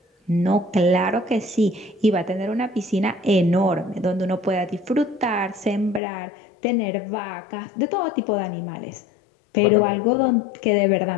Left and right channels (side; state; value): right; drops out; at 6.0 s